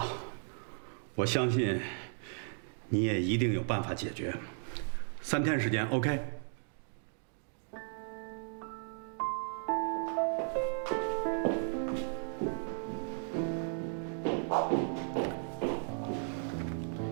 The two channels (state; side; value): silent; left; 54 dB below the other